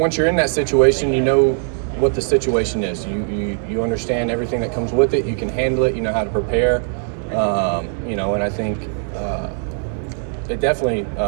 you're in that situation, you know what the situation is. You understand everything that comes with it. You can handle it. You know how to prepare. You know, and I think it definitely,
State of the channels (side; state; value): left; silent; digital silence